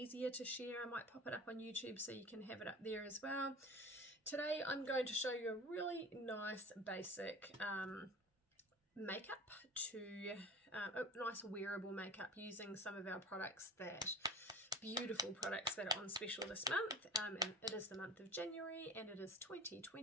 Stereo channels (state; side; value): normal; both; correlation 0.36